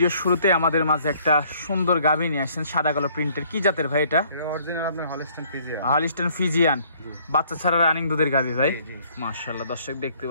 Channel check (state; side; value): inverted; both; correlation -0.61